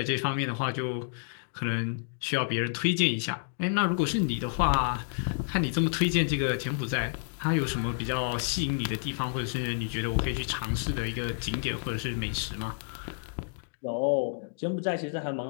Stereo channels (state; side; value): silent; right; digital silence